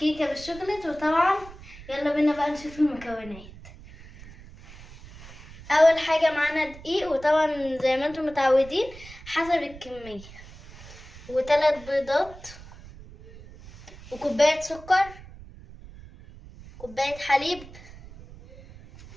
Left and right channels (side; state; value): right; noise; rumble, 18 dB below the sound